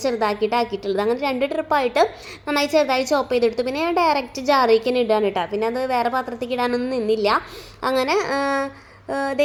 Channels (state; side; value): identical; both; correlation 1.00